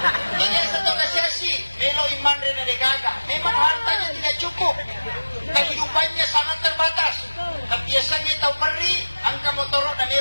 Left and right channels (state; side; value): inverted; both; correlation -1.00